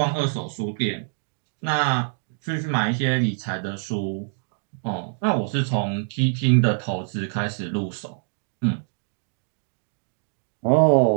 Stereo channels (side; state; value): left; silent; digital silence